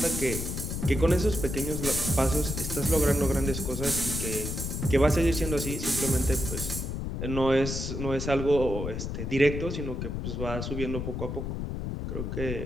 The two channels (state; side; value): noise; left; rumble, 4 dB below the sound